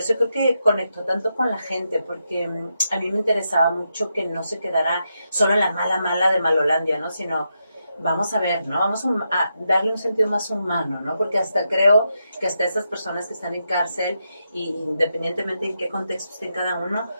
creo que conectó tanto con la gente, porque a mí me interesaba mucho que no se quedara solo en la mala de Malolandia, ¿no? Sino vamos a ver, ¿no? Vamos a darle un sentido más humano, ¿no? Porque hasta creo que hasta esas personas que están en cárcel, y independientemente en qué contexto estén cada uno,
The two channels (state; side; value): inverted; both; correlation -0.84